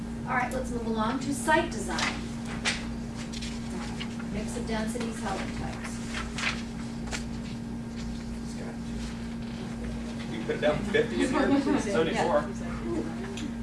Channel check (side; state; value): both; identical; correlation 1.00